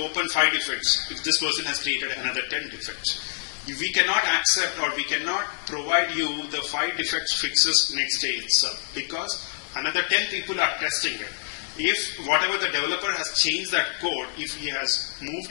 5 defects, if this person has created another 10 defects, we cannot accept or we cannot provide you the 5 defects fixes next day itself because another 10 people are testing it. If whatever the developer has changed that code, if he has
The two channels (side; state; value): right; silent; digital silence